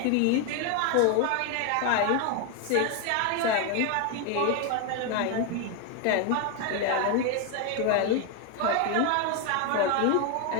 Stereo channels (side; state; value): both; different; correlation 0.01